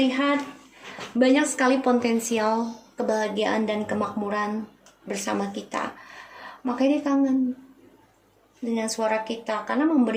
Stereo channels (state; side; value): identical; both; correlation 1.00